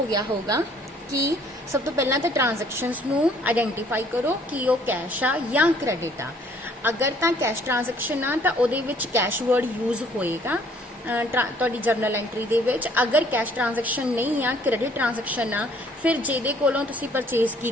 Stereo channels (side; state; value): both; normal; correlation 0.60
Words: गया होगा कि सब तो पहला तो ट्रांजैक्शनस नूं आइडेंटिफाई करो कि वो कैश आ या क्रेडिट आ। अगर तो कैश ट्रांजैक्शन आ तो उहदे विच कैश वर्ड यूज होएगा तुहाडी जर्नल एंट्री दे विच। अगर कैश ट्रांजैक्शन नहीं आ, क्रेडिट ट्रांजैक्शन आ, फिर जिहदे कोलों तुसीं परचेज